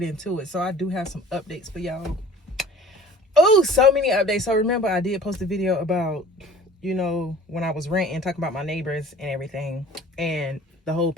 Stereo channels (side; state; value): both; normal; correlation 0.46